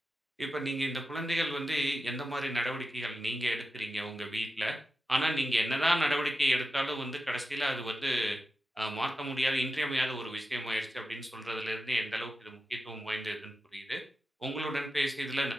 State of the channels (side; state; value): both; normal; correlation 0.91